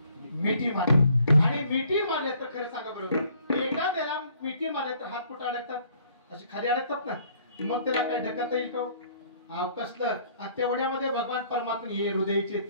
मिठी मारली आणि मिठी मारले तर खरं सांगा बरोबर एखाद्याला मिठी मारले तर हात कुठे अडकतात अशी खाली अडकतात ना मग त्याला काय ढकलता येईल का कसलं तेवढ्यामध्ये भगवान परमात्मा हे हृदयचे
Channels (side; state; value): both; inverted; correlation -0.61